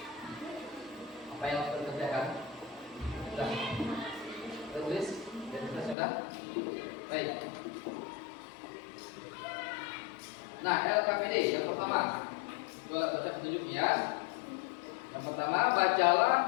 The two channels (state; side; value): drops out; right; at 6.0 s